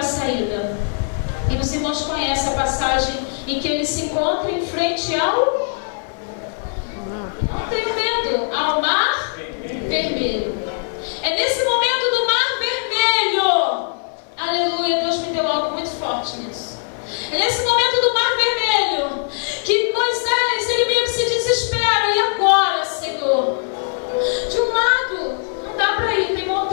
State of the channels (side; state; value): right; silent; digital silence